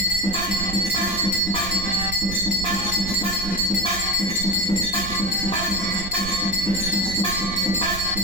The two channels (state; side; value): noise; right; rumble, 9 dB below the sound